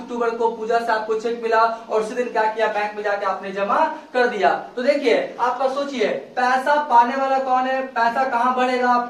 को पूजा से आपको चेक मिला और उसी दिन क्या किया, बैंक में जाके आपने जमा कर दिया। तो देखिए आपका सोचिए, पैसा पाने वाला कौन है, पैसा कहां बढ़ेगा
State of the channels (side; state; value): both; identical; correlation 1.00